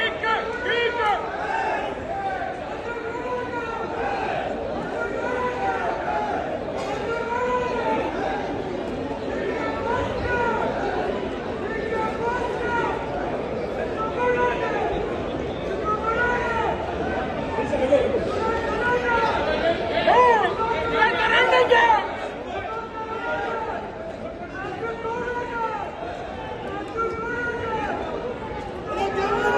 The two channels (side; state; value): both; identical; correlation 1.00